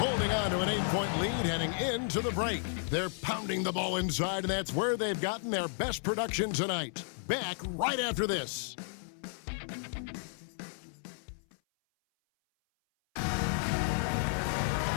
on to an 8-point lead heading into the break. They're pounding the ball inside, and that's where they've gotten their best production tonight. Back right after this.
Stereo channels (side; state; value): right; silent; 56 dB below the other